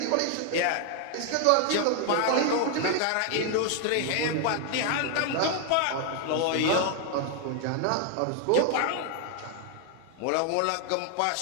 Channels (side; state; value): both; different; correlation 0.00